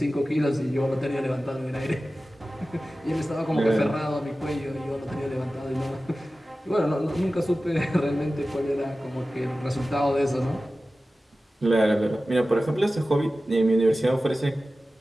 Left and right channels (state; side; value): normal; both; correlation 0.95